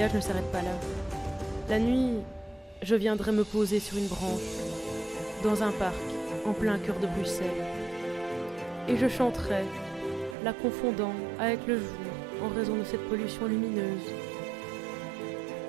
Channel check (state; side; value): drops out; left; at 10.4 s